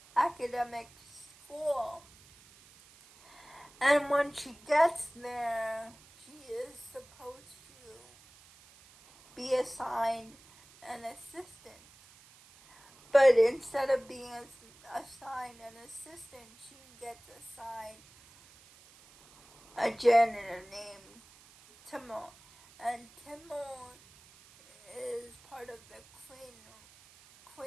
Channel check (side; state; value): right; noise; hiss, 25 dB below the sound